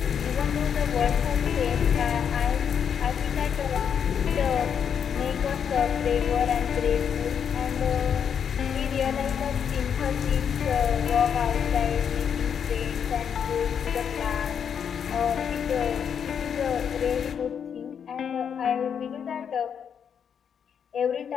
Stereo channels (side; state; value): right; quieter; 7.7 dB